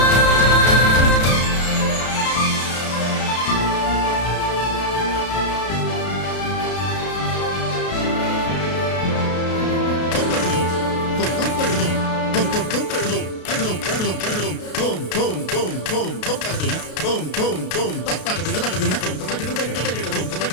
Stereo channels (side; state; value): right; late; 33 ms